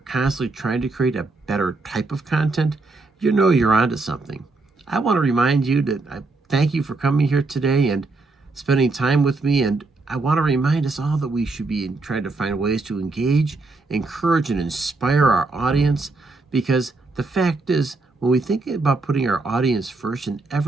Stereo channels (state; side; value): quieter; left; 3.5 dB